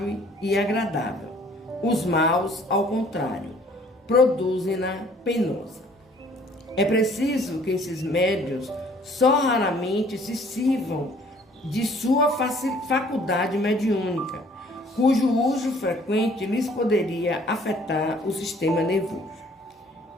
e agradável. Os maus, ao contrário, produzem-na penosa. É preciso que esses médios só raramente se sirvam de sua faculdade mediúnica, cujo uso frequente lhes poderia afetar o sistema nervoso.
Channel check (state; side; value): normal; both; correlation 0.57